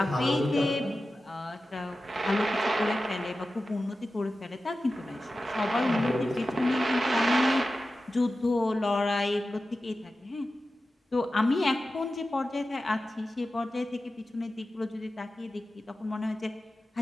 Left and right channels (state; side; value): normal; both; correlation 0.94